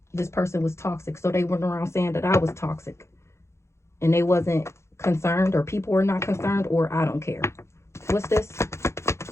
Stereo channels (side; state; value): right; late; 0.13 ms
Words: This person was toxic. So they went around saying that I was toxic. And they wasn't concerned, or people were not concerned, or I don't care. What's this?